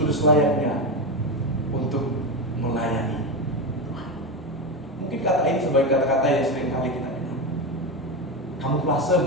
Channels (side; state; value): both; normal; correlation 0.15